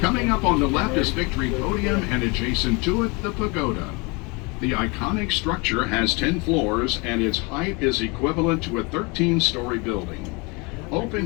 Coming up on the left is Victory Podium, and adjacent to it, the Pagoda. The iconic structure has 10 floors, and its height is equivalent to a 13-story building.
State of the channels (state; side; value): quieter; right; 28.8 dB